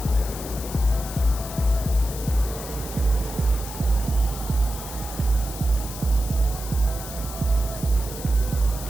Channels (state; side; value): noise; left; hiss, 11 dB below the sound